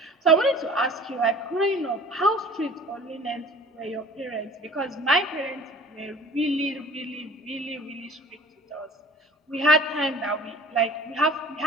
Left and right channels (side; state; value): both; normal; correlation 0.46